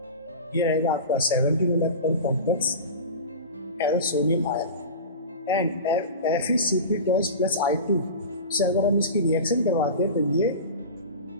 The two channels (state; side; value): inverted; both; correlation -0.30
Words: ये रहेगा आपका 17 electron complex ferrocenium ion and FeCp+I2 से अगर हम इसकी रिएक्शन करवाते हैं तो ये